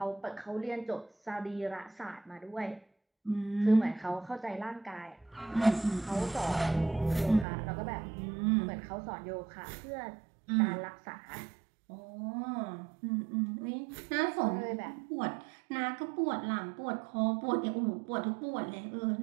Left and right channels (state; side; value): drops out; left; at 7.5 s